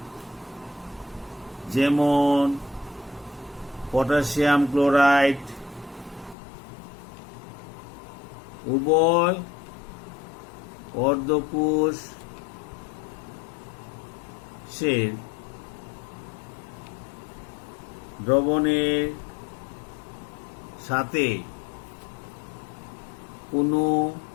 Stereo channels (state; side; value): drops out; right; at 6.4 s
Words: যেমন পটাশিয়াম ক্লোরাইড, উভয় অর্ধকোষের দ্রবণের সাথে কোনো